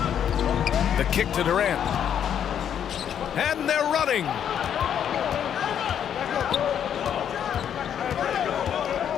The kick to Durant. And they're running.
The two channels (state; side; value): quieter; right; 9.0 dB